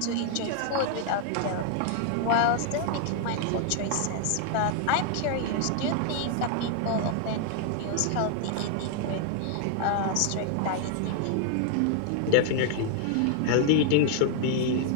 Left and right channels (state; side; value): different; both; correlation 0.00